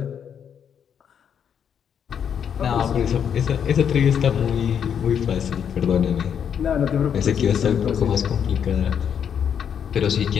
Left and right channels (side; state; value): right; quieter; 8.1 dB